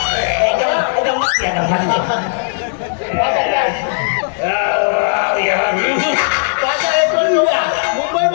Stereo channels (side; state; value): right; silent; 64 dB below the other